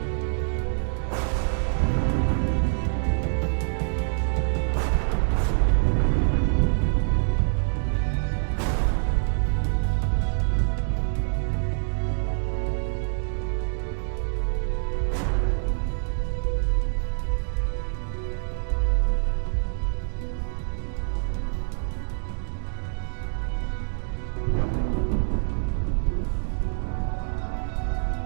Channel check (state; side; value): silent; left; digital silence